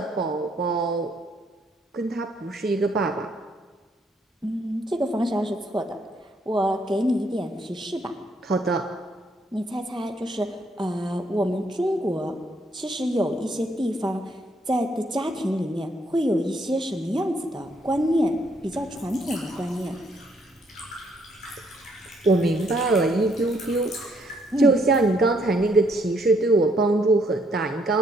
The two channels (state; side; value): normal; both; correlation 0.70